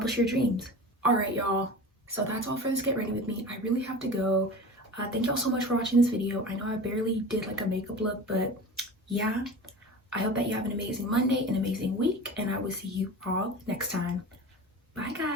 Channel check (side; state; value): both; normal; correlation 0.34